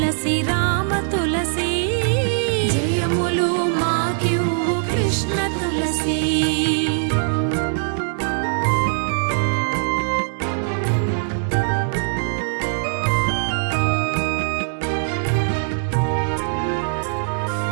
రామ తులసి, జయములు మాకెవ్వు కృష్ణ తులసి.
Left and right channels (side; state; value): left; silent; digital silence